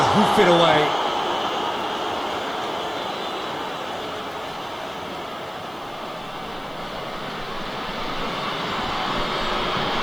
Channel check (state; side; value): noise; right; hiss, 27 dB below the sound